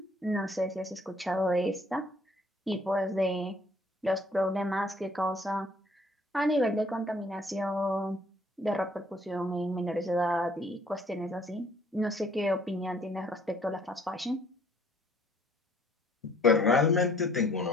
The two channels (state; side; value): normal; both; correlation 0.60